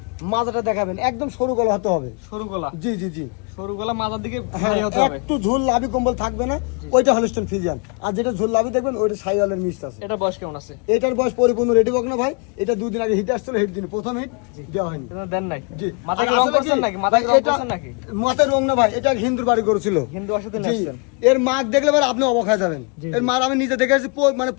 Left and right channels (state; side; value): quieter; right; 35.6 dB